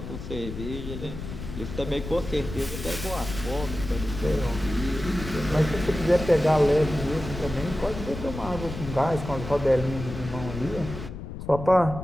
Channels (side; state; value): left; noise; rumble, 9 dB below the sound